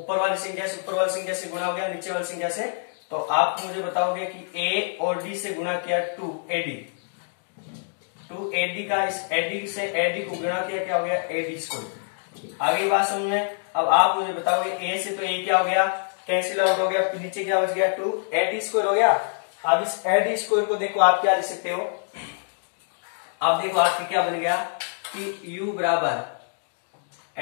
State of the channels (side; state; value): right; silent; digital silence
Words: वाली संख्या से गुणा हो गया नीचे वाली संख्या से, तो आप मुझे बताओगे कि A और D से गुणा किया 2AD का, इस AD से AD को गुणा किया क्या हो गया AD स्क्वायर। आगे बात समझ में। अब आप मुझे बताओगे A से तो A क्या हो गया, कैंसिल आउट हो गया, फिर नीचे क्या बच गया 2 AD स्क्वायर हो गया। अब इस AD स्क्वायर को देखो आप क्या लिख सकते हो, अब देखो आपके क्या बन गया कि U बराबर